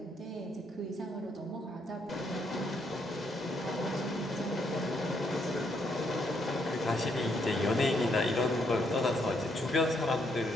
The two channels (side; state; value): both; normal; correlation 0.74